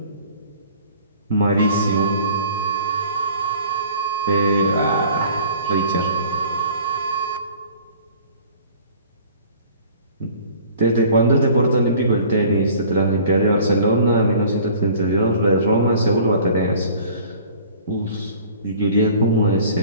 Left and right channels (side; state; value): both; inverted; correlation -0.49